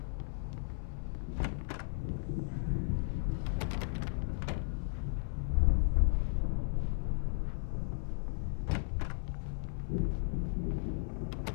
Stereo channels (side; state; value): right; silent; 54 dB below the other